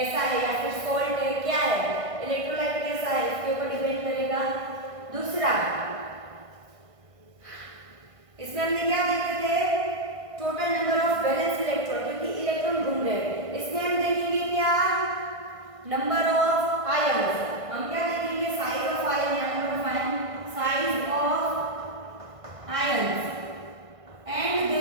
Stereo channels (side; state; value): left; late; 1.5 ms